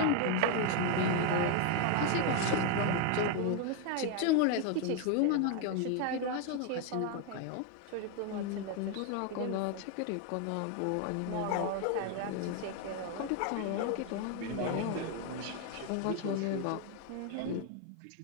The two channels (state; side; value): different; both; correlation 0.01